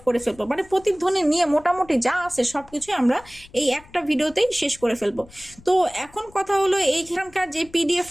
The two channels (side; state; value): left; noise; rumble, 24 dB below the sound